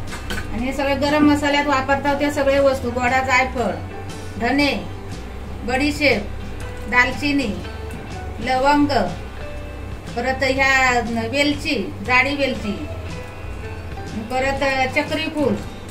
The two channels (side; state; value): both; identical; correlation 1.00